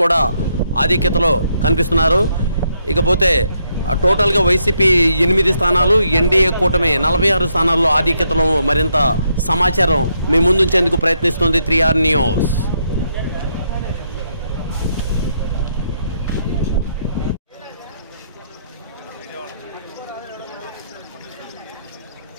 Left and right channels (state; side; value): inverted; both; correlation -0.77